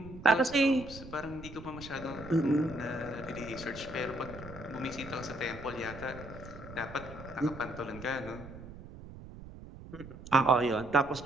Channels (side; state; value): right; noise; rumble, 14 dB below the sound